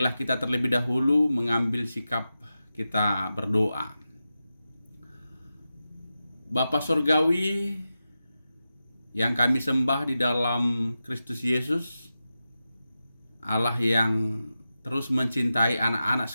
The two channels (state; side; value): inverted; both; correlation -0.92